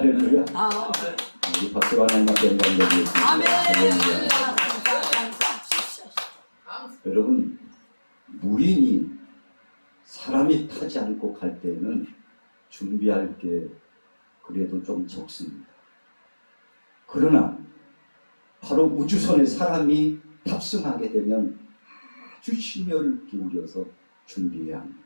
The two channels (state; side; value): inverted; both; correlation -1.00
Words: 우리 박수가 하나님께 영광 드리겠습니다. 아멘. 여러분, 무인이 사람이 타지 않고 갈 때는 준비할 게 그래도 좀 적습니다. 그러나 바로 우주선에 사람이 탑승하게 되면 아주 심혈을 기울여서 준비해야 합니다.